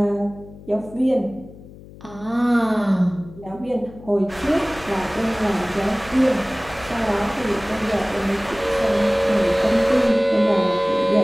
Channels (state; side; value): noise; left; hum, 19 dB below the sound